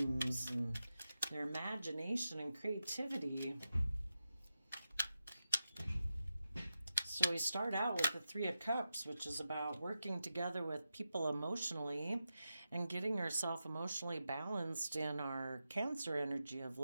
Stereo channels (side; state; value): both; inverted; correlation -0.90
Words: and their imagination and creativity. So we start out with the Three of Cups, which is about working together with people emotionally and getting ourselves emotionally balanced in our Cancer energy of